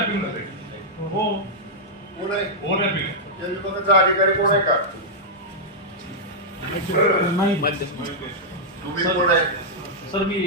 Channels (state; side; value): normal; both; correlation -0.08